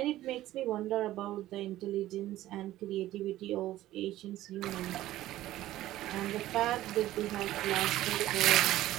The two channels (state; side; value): quieter; left; 14.9 dB